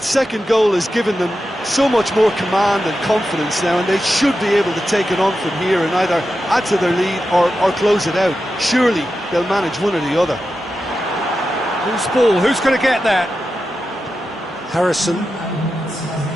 second goal has given them so much more command and confidence now, and they should be able to take it on from here and either add to their lead or close it out. Surely they'll manage one or the other. Who's ball? Who's going to get that? Harrison.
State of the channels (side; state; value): both; normal; correlation 0.90